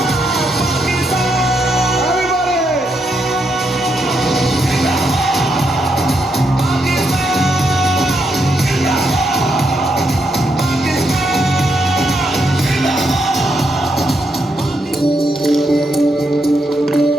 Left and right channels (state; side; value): normal; both; correlation 0.80